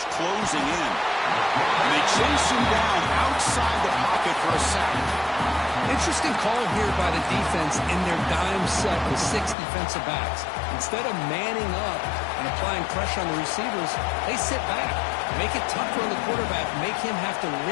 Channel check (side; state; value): right; drops out; at 9.6 s